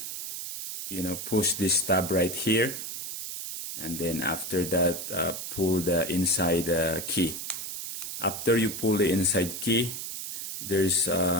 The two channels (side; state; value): right; noise; hiss, 6 dB below the sound